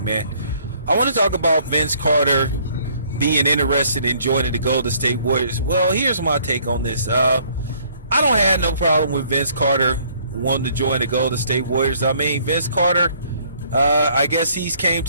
man. I want to talk about Vince Carter being interested in joining the Golden State Warriors. Well, here's my take on this. I don't have no problem with Vince Carter wanting to join the Golden State Warriors. I mean, Vince Carter, I guess he's came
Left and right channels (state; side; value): inverted; both; correlation -0.62